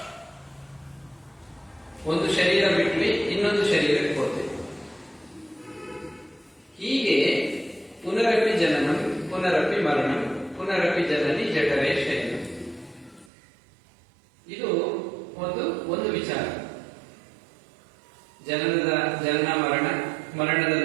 ಒಂದು ಶರೀರ ಬಿಟ್ವಿ, ಇನ್ನೊಂದು ಶರೀರಕ್ಕೆ ಹೋಗ್ತೇವೆ. ಹೀಗೆ ಪುನರಪಿ ಜನನಂ ಪುನರಪಿ ಮರಣಂ ಪುನರಪಿ ಜನನಿ ಜಠರೇ ಶರೀರ. ಇದು ಒಂದು ವಿಚಾರ. ಜನನ ಮರಣದ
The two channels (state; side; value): drops out; left; at 13.3 s